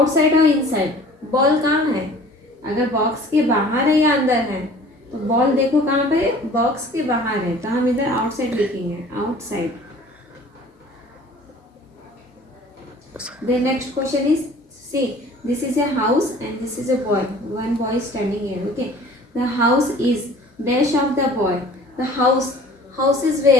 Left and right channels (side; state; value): both; normal; correlation 0.48